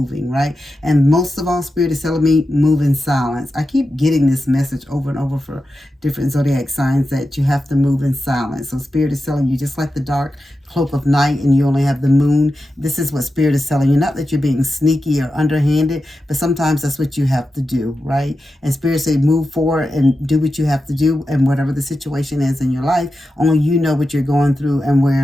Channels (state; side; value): normal; both; correlation 0.91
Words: right? And most of all, Spirit is telling me, move in silence. I keep getting this message over and over for different zodiac signs that you have to move in silence. So Spirit is telling you, just like the dark cloak of night and you only have the Moon, this is what Spirit is telling you. Not that you're being sneaky or underhanded, but sometimes that's what you have to do, right? And Spirit say move forward and do what you have to do, and whatever the situation is in your life, only you know what you're going through and